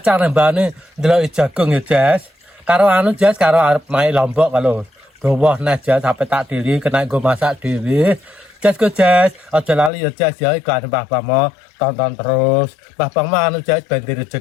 nembane ndelok jagung ya Jes. Karo anu Jes karo arep main Lombok kalau dawa nah Jes sampe tak dili kena nggo masak dhewe. Jes go Jes, aja lali ya Jes ya iklan Mbah tonton terus. Mbah anu Jes ben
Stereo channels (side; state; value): right; drops out; at 9.9 s